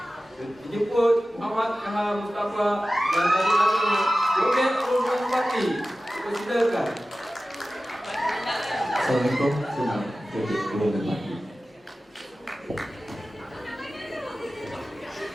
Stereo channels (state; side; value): normal; both; correlation 0.96